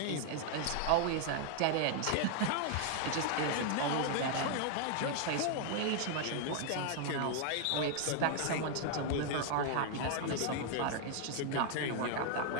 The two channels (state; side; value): different; both; correlation 0.00